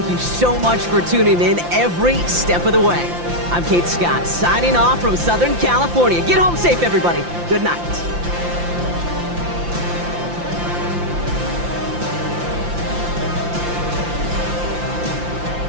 you so much for tuning in every step of the way. I'm Kate Scott, signing off from Southern California. Get home safe, everybody. Good night.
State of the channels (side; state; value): left; late; 5.8 ms